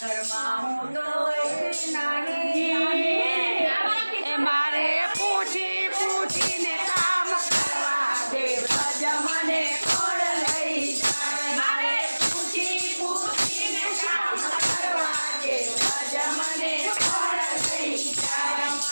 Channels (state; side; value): inverted; both; correlation -1.00